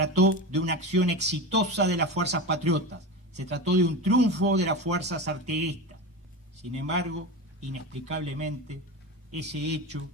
de una acción exitosa de las fuerzas patriotas, se trató de un triunfo de las fuerzas artiguistas. Sin embargo, inexplicablemente, ese hecho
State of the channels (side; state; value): both; normal; correlation 0.24